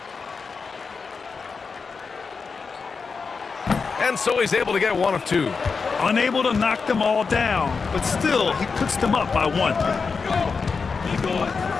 And so he's able to get one of 2. Unable to knock them all down, but still, he puts them up by 1.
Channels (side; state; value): right; quieter; 5.0 dB